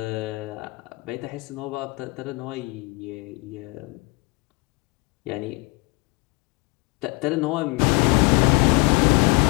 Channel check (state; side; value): quieter; right; 27.7 dB